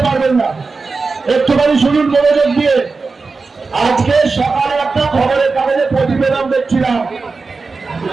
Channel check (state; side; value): quieter; left; 4.2 dB